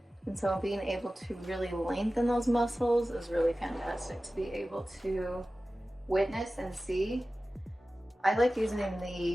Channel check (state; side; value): normal; both; correlation 0.96